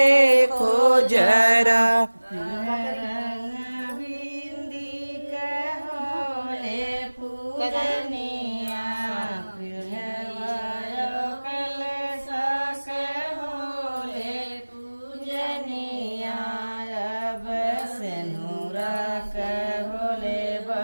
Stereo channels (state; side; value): inverted; both; correlation -1.00